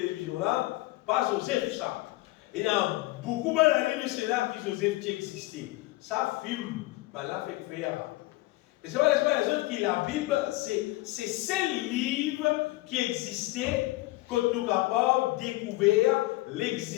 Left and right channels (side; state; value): right; quieter; 19.7 dB